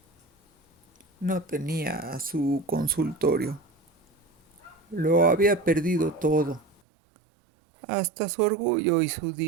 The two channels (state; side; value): drops out; left; at 6.8 s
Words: no tenía su consultorio. Lo había perdido todo, hasta su orgullo y su